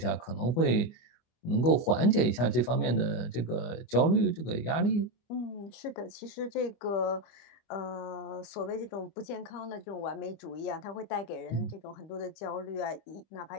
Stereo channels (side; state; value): right; late; 24 ms